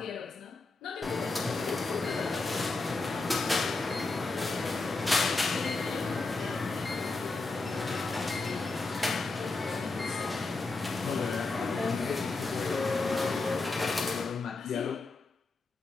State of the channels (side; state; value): right; quieter; 3.5 dB